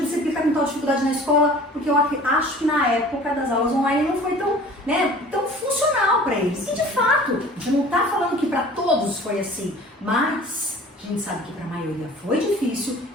que tá com tal dificuldade na escola, porque eu acho que na época das aulas online não foi tão, né, tão funcional para eles. E de fato, a gente não tá falando que para todos foi assim, mas a gente sabe que para a maioria foi difícil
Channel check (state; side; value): normal; both; correlation 0.46